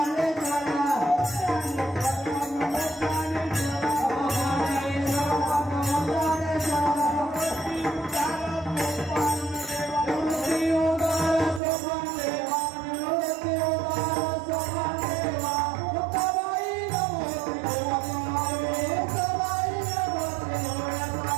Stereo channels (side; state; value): left; drops out; at 11.6 s